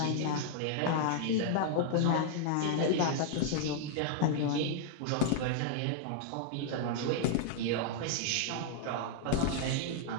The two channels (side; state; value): both; different; correlation -0.01